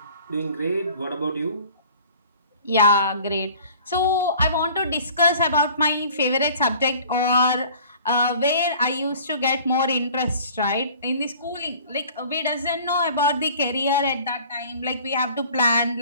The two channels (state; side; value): inverted; both; correlation -0.48